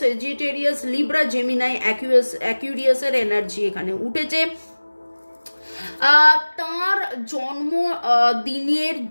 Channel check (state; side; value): inverted; both; correlation -1.00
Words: সেজিটেরিয়াস, লিব্রা, জেমিনাই, অ্যাকুরিয়াসের এনার্জি এখানে উঠেছে। তার জন্ম দিনের